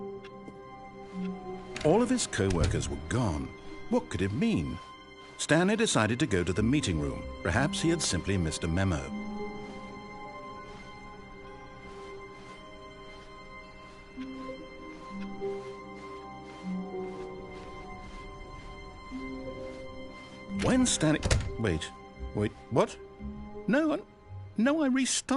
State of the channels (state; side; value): identical; both; correlation 1.00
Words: All of his co-workers were gone. What could it mean? Stanley decided to go to the meeting room. Perhaps he had simply missed a memo. When Stanley... Wait, what? No, I